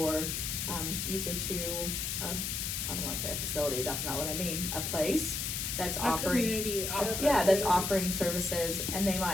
usually to, I don't wanna say a facility, that's not what I mean, a place that's a offering. community office. Yeah, that's offering services, and they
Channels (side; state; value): left; noise; hiss, 2 dB below the sound